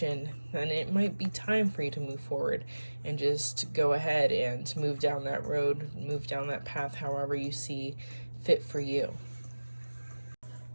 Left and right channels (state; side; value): inverted; both; correlation -1.00